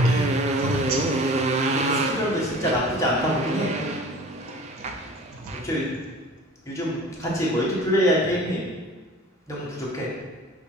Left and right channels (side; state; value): both; normal; correlation 0.43